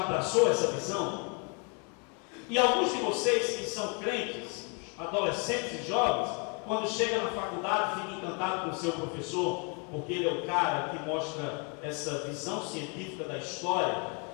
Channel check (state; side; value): quieter; right; 35.8 dB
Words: essa visão, e alguns de vocês que são crentes, adolescentes e jovens, quando chega na faculdade fica encantado com o seu professor, porque ele é o cara que mostra essa visão científica da história,